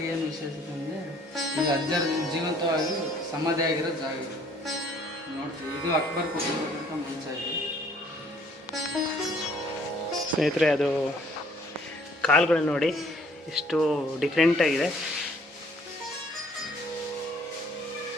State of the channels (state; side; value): normal; both; correlation 0.59